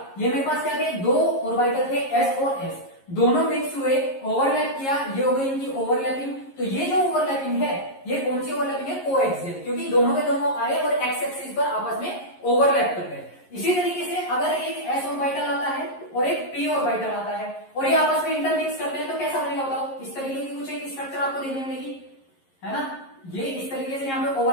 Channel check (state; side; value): late; right; 11 ms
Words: ये मेरे पास क्या थे, दो ऑर्बिटल थे एस और एस, दोनों मिक्स हुए, ओवरलैप किया, ये हो गई इनकी ओवरलैपिंग। तो ये जो ओवरलैपिंग है ये कौन सी ओवरलैपिंग है, कोएक्सियल, क्योंकि दोनों के दोनों आए और एक्स एक्सिस पर आपस में ओवरलैप कर गए। इसी तरीके से अगर एक एस ऑर्बिटल आता है और एक पी ऑर्बिटल आता है और ये आपस में इंटरमिक्स करते हैं तो कैसा बनेगा बताओ, इस तरीके की कुछ एक स्ट्रक्चर आपको देखने मिलेगी, है ना। ये इस तरीके से यहाँ पे